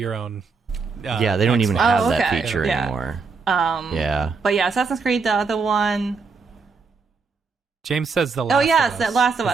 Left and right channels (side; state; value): left; quieter; 4.8 dB